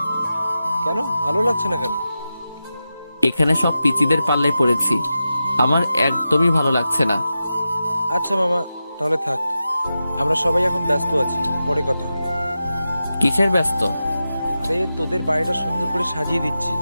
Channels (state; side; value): inverted; both; correlation -0.91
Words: কেন ভালো লাগছে না কেন? এখানে সব পিচিদের পাল্লায় পড়েছি, আমার একদমই ভালো লাগছে না। আচ্ছা মামা, তাহলে থাক, আমরা সবাই এখন ব্যস্ত আছি, পরে কথা হবে। কিসের ব্যস্ত? আরে তোদের বাড়িটা সুন্দর করে সাজিয়ে দিচ্ছি